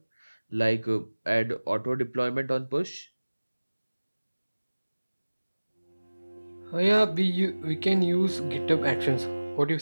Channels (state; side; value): inverted; both; correlation -1.00